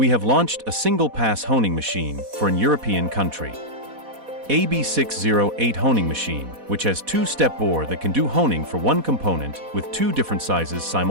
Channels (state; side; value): late; left; 4.1 ms